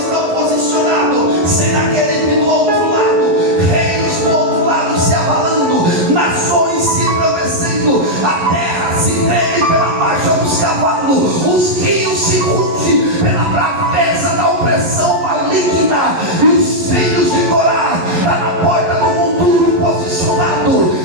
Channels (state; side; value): late; left; 11 ms